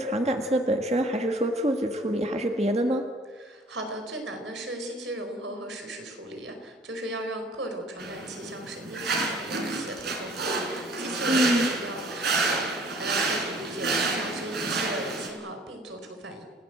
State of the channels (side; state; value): both; normal; correlation 0.53